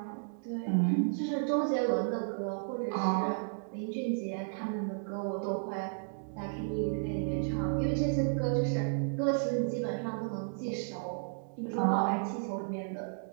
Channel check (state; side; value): silent; left; digital silence